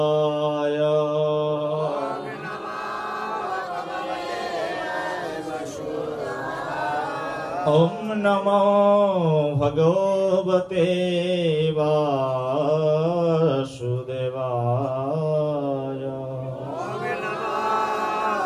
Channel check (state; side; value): identical; both; correlation 1.00